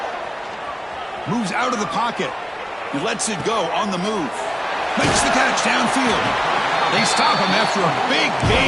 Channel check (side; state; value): both; identical; correlation 1.00